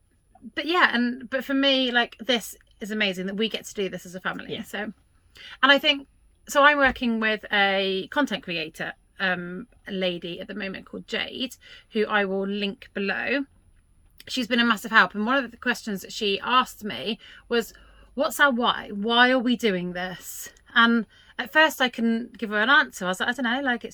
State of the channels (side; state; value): both; identical; correlation 1.00